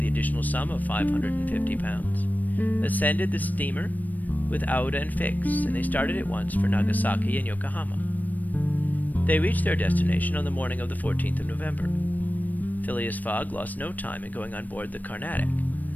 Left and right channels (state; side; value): late; right; 0.083 ms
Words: additional sum of £550, ascended the steamer with Aouda and Fix, and they started at once for Nagasaki and Yokohama. They reached their destination on the morning of the 14th of November. Phileas Fogg lost no time in going on board the Carnatic,